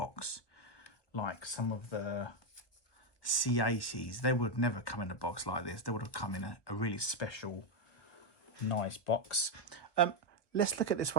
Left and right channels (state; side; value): late; right; 1.2 ms